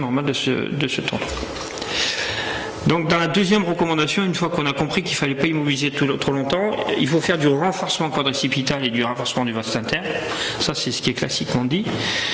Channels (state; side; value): identical; both; correlation 1.00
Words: de ce tendon. Donc dans la deuxième recommandation, une fois qu'on a compris qu'il ne fallait pas immobiliser trop longtemps, il faut faire du renforcement quadricipital et du renforcement du vaste interne. Ça c'est ce qui est classiquement dit.